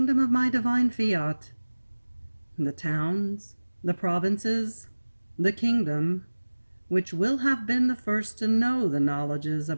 of my divine fiat. The towns, the provinces, the kingdom, which will have been the first to know the knowledges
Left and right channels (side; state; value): both; inverted; correlation -1.00